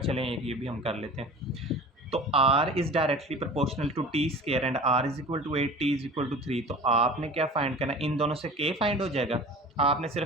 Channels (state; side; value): normal; both; correlation 0.40